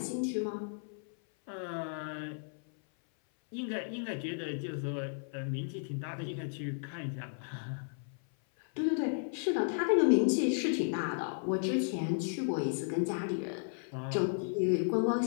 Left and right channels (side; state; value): right; silent; 55 dB below the other